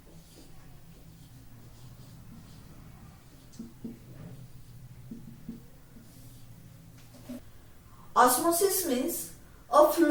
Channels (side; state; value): both; identical; correlation 1.00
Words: Osmosis means a